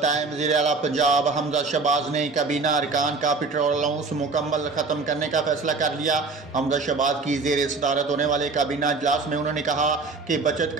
वज़ीर आला पंजाब हमजा शहबाज ने काबीना अरकान का पेट्रोल अलाउंस मुकम्मल ख़त्म करने का फैसला कर लिया। हमजा शहबाज की ज़ेर सदारत होने वाले काबीना इजलास में उन्होंने कहा कि बचत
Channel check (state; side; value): quieter; left; 4.1 dB